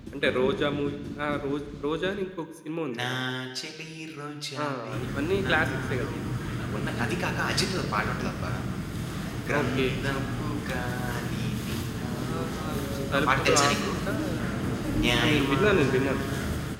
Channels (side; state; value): both; identical; correlation 1.00